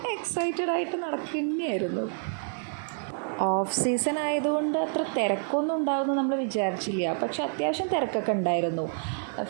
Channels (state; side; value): silent; left; 59 dB below the other